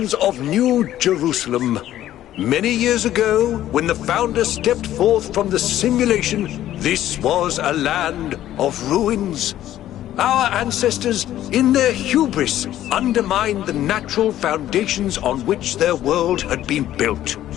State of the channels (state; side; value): quieter; right; 12.8 dB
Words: of New Jerusalem, many years ago, when the founder stepped forth from the simulation, this was a land of ruins. Our ancestors, in their hubris, undermined the natural foundations on which their world had been built.